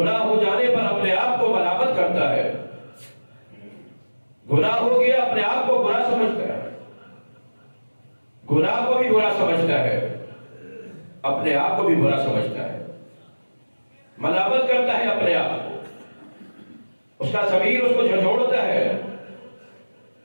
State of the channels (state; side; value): inverted; both; correlation -1.00